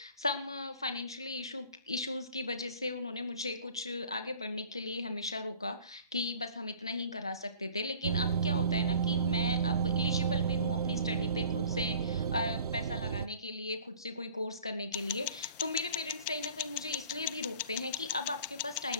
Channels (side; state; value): both; inverted; correlation -0.49